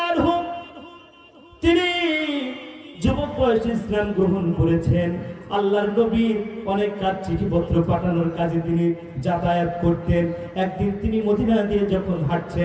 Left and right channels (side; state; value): both; identical; correlation 1.00